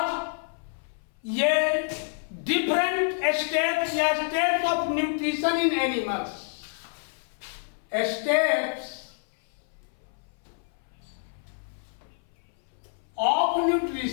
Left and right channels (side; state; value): right; silent; 59 dB below the other